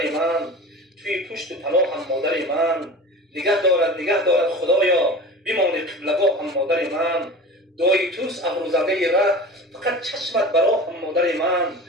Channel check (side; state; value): both; normal; correlation 0.35